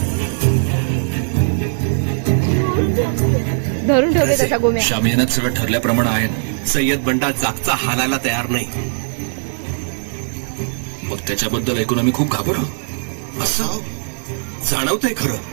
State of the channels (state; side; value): silent; left; digital silence